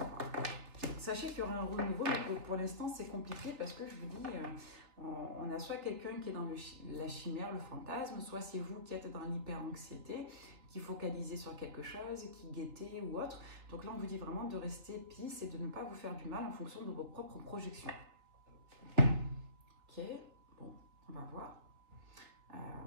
voir. Sachez qu'il y aura un renouveau, mais pour l'instant, c'est compliqué parce que je vous dis, on a soit quelqu'un qui est dans la chimère, le fantasme, soit c'est vous qui êtes dans l'hyper-anxiété, qui focalisez sur quelque chose, qui guettez ou autre. Donc là, on vous dit vraiment de rester peace et de ne pas vous faire du mal en fonction de vos propres projections. Ok, bon, on va voir.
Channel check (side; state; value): left; late; 3.4 ms